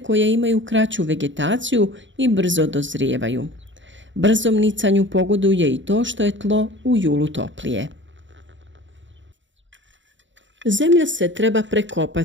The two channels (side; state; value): left; late; 0.54 ms